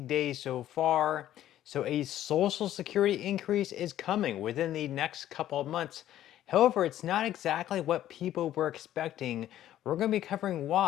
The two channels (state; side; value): quieter; right; 12.5 dB